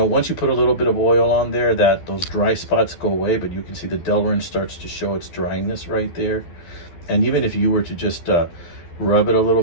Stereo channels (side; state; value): right; late; 12 ms